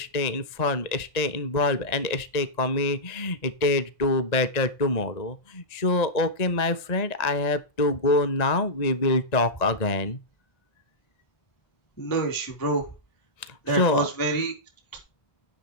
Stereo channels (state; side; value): late; right; 1.9 ms